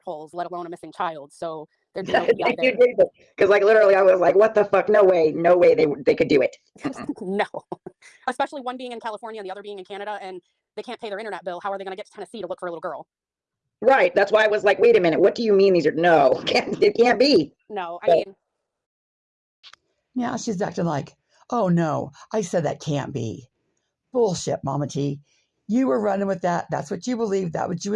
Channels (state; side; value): identical; both; correlation 1.00